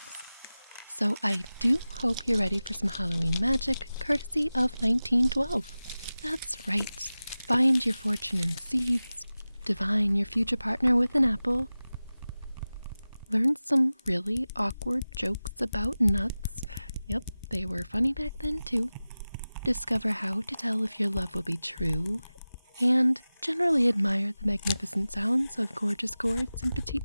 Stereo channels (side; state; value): both; inverted; correlation -0.96